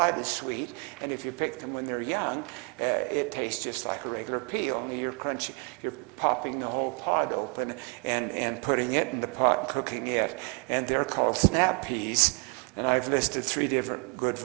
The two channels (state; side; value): quieter; left; 34.6 dB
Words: is sweet, and if you pick them when they're young, it tastes just like a regular pea, only you're popping the whole pod open and putting it in the pot, cooking it, and they're called snap peas. And I've listed 3 different good